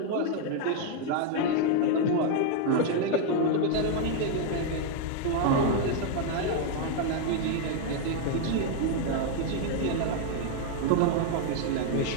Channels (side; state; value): both; different; correlation 0.00